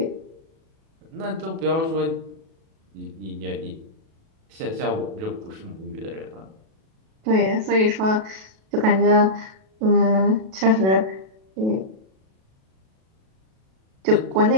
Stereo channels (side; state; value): left; late; 37 ms